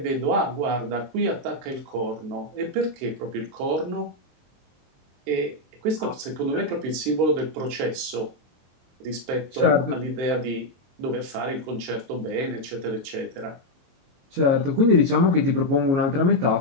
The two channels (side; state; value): left; late; 22 ms